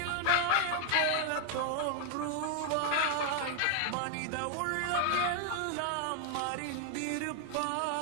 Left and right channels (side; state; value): both; different; correlation 0.00